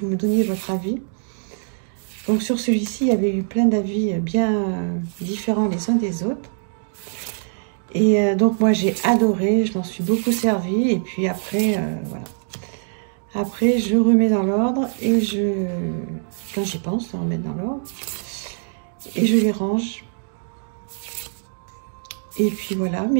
vous me donniez votre avis. Donc, sur celui-ci, il y avait eu plein d'avis bien différents les uns des autres. Et donc, moi, j'ai adoré, je m'en suis beaucoup servi. Et puis après, voilà. Après, je remets dans l'ordre et quand j'y pense, on remet dans l'ordre. Et je les range. Et puis voilà.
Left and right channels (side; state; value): left; silent; digital silence